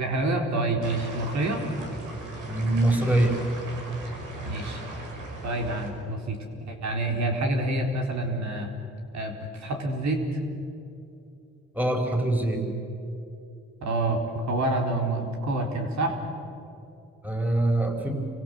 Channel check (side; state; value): both; normal; correlation 0.48